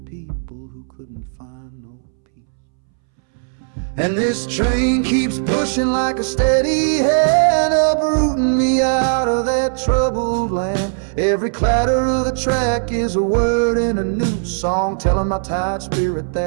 people who couldn't find no peace. And this train keeps pushing like a steady hand, uprooting me out of that troubled land. Every clatter of the track is a word in a new song, telling my tired spirit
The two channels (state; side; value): silent; left; 66 dB below the other